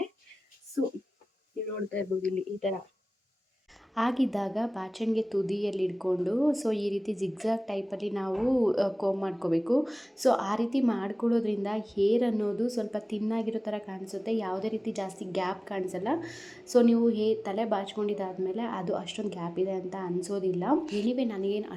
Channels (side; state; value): both; normal; correlation 0.98